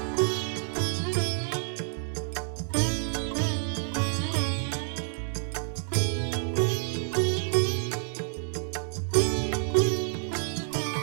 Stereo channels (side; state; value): left; silent; digital silence